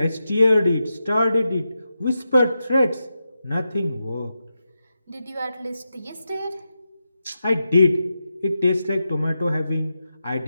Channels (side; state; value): both; inverted; correlation -0.89